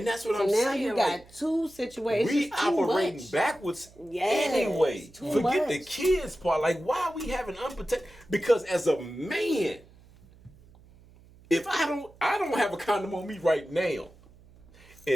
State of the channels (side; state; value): right; noise; hum, 25 dB below the sound